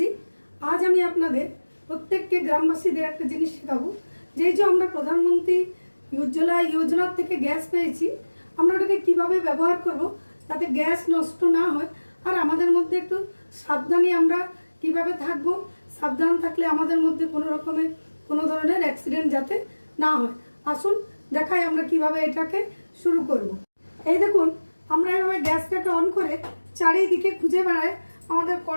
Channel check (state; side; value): inverted; both; correlation -1.00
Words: आज আমি আপনাদের প্রত্যেককে গ্রামবাসীদের একটা জিনিস শেখাবো যে আমরা প্রধানমন্ত্রী উজ্জ্বলা যোজনা থেকে গ্যাস পেয়েছি, আমরা ওটাকে কীভাবে ব্যবহার করব যাতে গ্যাস নষ্ট না হয় আর আমাদের মধ্যে একটু সাবধানী আমরা কিভাবে থাকব, সাবধান থাকলে আমাদের মধ্যে কোনো ধরনের অ্যাক্সিডেন্ট যাতে না হয়। আসুন দেখাই আমরা কিভাবে এটাকে শুরু করব। এই দেখুন, আমরা এভাবে গ্যাসটাকে অন করে চারিদিকে খুঁজে বেড়াই আমাদের